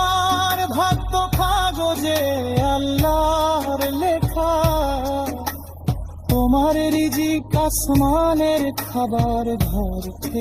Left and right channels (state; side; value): identical; both; correlation 1.00